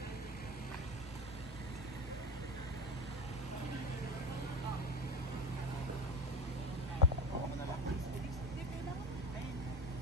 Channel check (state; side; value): normal; both; correlation 0.26